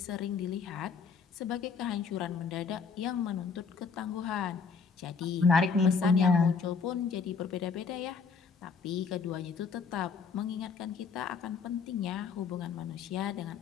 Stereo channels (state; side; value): quieter; right; 5.4 dB